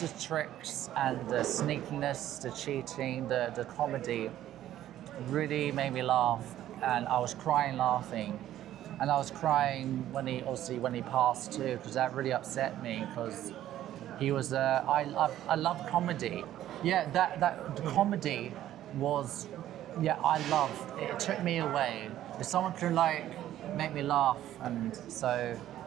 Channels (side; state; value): left; quieter; 12.6 dB